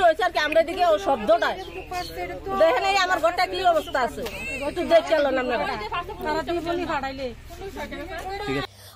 হইছে আর কি আমরা এদিকে ও শব্দটা দেখেন এই আমার ঘরটা কি অবস্থা আছে একটু দেখলেন আপনারা তারা টিপনি ফাটাইলে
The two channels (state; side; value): identical; both; correlation 1.00